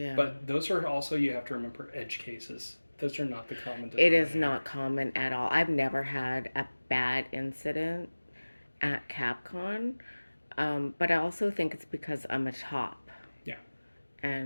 But those are also, you have to remember, edge cases. Those are not the common denominator. It is not common at all. I've never had a bad incident at Capcon, but I also think it's because I'm a top. Yeah.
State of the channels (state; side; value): inverted; both; correlation -1.00